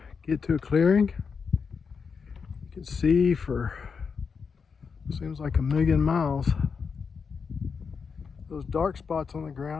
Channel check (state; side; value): quieter; right; 5.7 dB